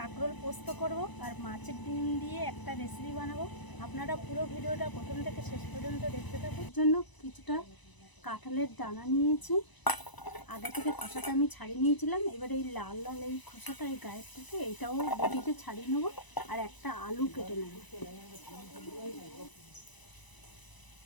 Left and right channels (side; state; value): right; late; 1.0 ms